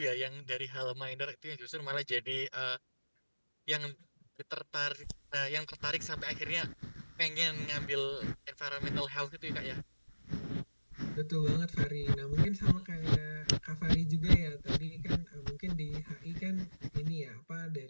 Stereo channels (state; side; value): inverted; both; correlation -1.00